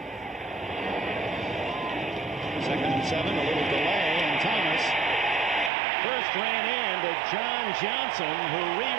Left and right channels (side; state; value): left; drops out; at 5.7 s